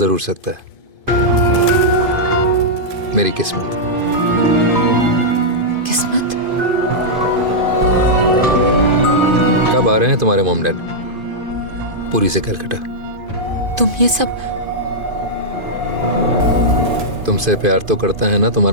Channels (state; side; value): late; left; 2.5 ms